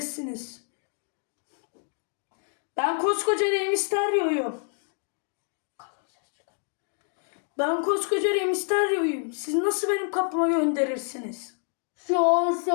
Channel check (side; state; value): right; silent; 55 dB below the other